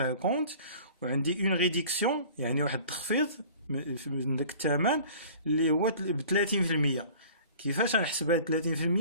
وعندي une réduction يعني واحد التخفيض من داك الثمن اللي هو ب 30%. كيفاش غنحسبها 30%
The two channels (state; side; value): inverted; both; correlation -0.46